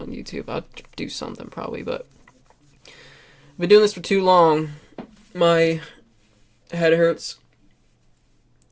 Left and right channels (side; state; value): both; identical; correlation 1.00